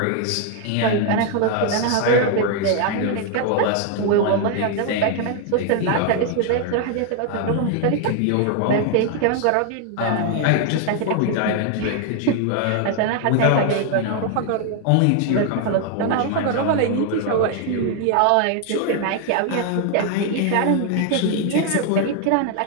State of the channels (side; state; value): both; different; correlation 0.00